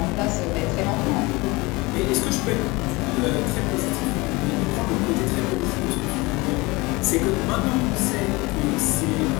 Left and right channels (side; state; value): right; quieter; 23.6 dB